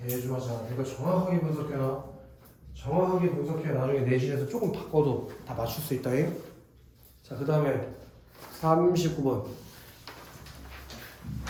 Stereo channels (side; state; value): both; identical; correlation 1.00